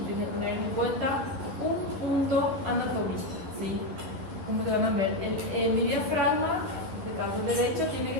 tiene que tener en cuenta un punto anatómico, ¿sí? Como que van a ver, mi diafragma, en el caso derecho, tiene que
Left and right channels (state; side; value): late; left; 11 ms